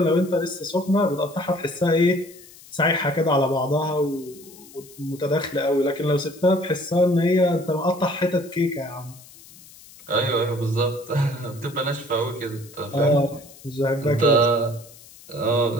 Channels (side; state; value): left; noise; hiss, 21 dB below the sound